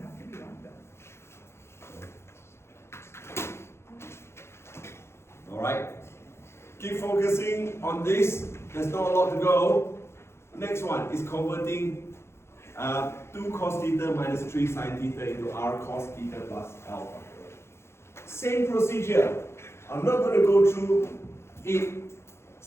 Alright? Keep focusing on this. There's not a lot to go. Next one is converting 2 cos theta minus 3 sine theta into r cos theta plus alpha. Same procedure. I'm not going to go through it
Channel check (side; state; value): right; late; 0.12 ms